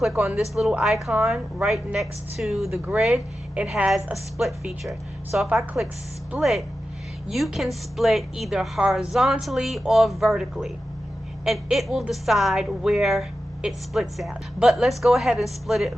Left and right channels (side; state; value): both; normal; correlation 0.92